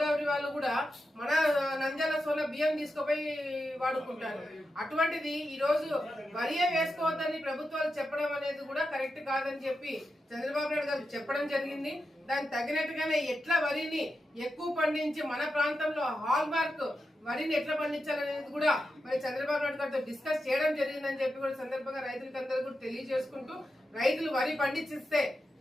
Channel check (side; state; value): both; normal; correlation 0.88